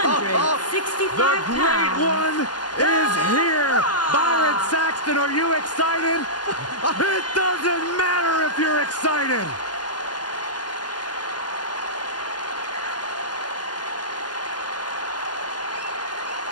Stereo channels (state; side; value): late; right; 0.70 ms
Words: The great pounds, one is here! Byron Saxton, are you excited? It doesn't matter if you're excited!